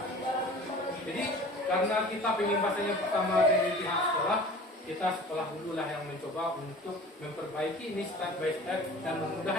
Jadi karena kita pengimbasnya pertama dari pihak sekolah, kita sekolah dulu lah yang mencoba untuk memperbaiki ini step by step dan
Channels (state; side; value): normal; both; correlation 0.42